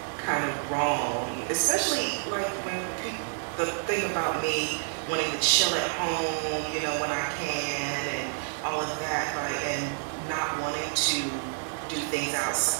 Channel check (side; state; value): left; silent; digital silence